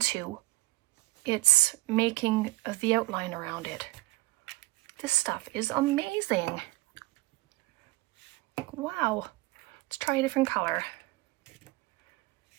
it's making the outline around it. This stuff is amazing. Wow. Let's try a different color.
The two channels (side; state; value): left; quieter; 20.0 dB